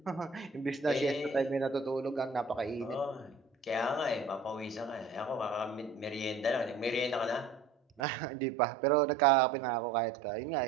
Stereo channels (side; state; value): left; drops out; at 8.0 s